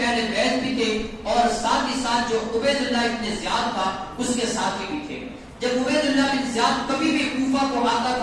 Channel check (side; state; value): both; identical; correlation 1.00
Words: بیت بھی تھے اور ساتھ ہی ساتھ جو عبید اللہ بن زیاد تھا اس کے ساتھی بھی تھے. جب عبید اللہ بن زیاد کبھی بھی کوفہ کو آتا